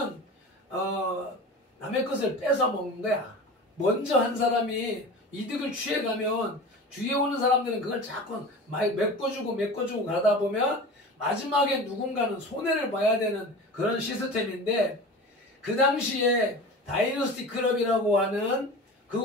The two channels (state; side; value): normal; both; correlation 0.34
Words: 남의 것을 뺏어 먹는 거야. 먼저 한 사람이 이득을 취해가면 뒤에 오는 사람들은 그걸 자꾸 메꿔주고 가다 보면 마지막에 누군가는 손해를 봐야 되는 그런 시스템인데, 그 당시에 다이너스티 클럽이라고 하는